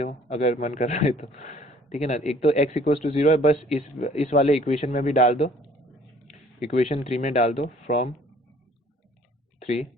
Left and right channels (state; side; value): normal; both; correlation 0.56